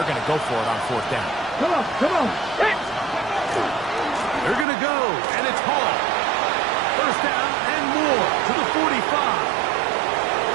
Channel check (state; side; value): drops out; left; at 4.7 s